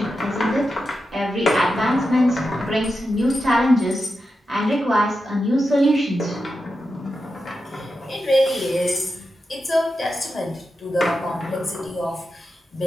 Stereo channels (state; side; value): normal; both; correlation 0.89